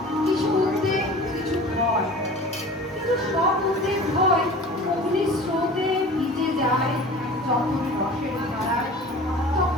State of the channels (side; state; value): both; normal; correlation 0.40